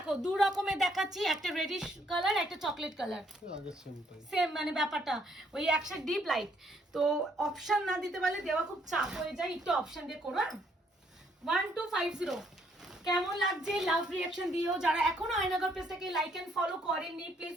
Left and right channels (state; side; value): normal; both; correlation 0.69